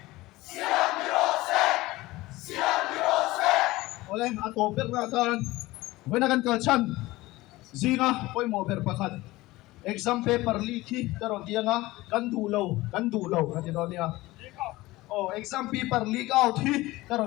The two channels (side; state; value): right; quieter; 19.1 dB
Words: Ole ato per na tan wena kan kalchan zinga poi mo per pakhat exam paper leak hi karon tianga kan du lo kan ti do nia. Oh, exam paper leak out hi